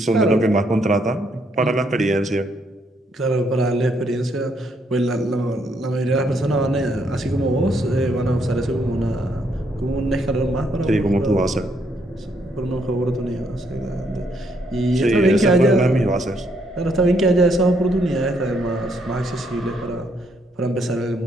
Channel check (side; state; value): both; normal; correlation 0.73